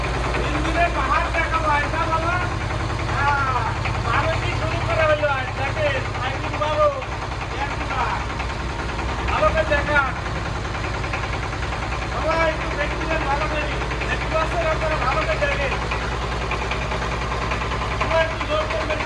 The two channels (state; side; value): identical; both; correlation 1.00